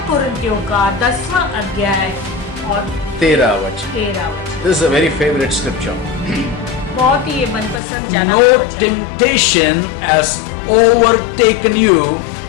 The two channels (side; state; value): right; drops out; at 7.8 s